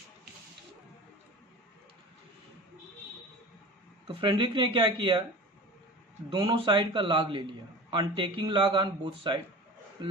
तो फ्रेडरिक ने क्या किया, दोनों साइड का लॉग ले लिया, on taking log on both side,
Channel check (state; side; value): normal; both; correlation 0.36